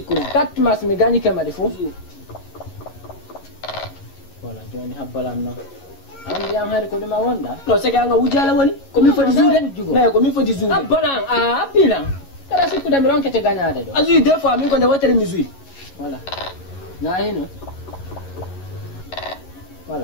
kat mas mi ganyi ke madi fu wala joni habbalan no andi am hari ko dum wonda no sege anga wujala woni ko mi fodi zude me ko mi fodi zude habbalan a apilan kada sikuda mi ronkete ganyade do azu des fois mi ko de wotere mi zui wala na hino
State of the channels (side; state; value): right; late; 11 ms